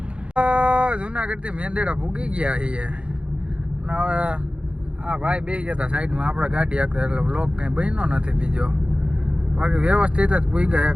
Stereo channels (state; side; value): late; left; 0.059 ms